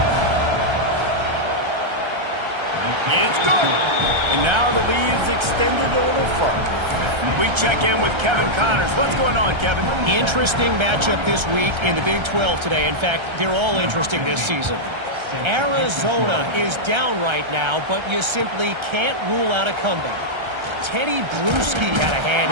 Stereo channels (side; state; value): left; late; 1.3 ms